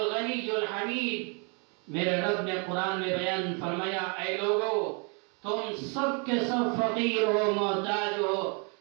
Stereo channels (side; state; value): left; quieter; 35.5 dB